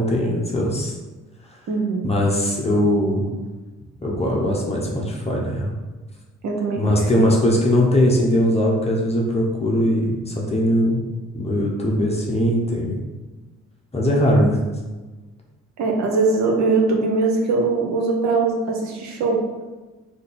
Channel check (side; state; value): both; normal; correlation 0.51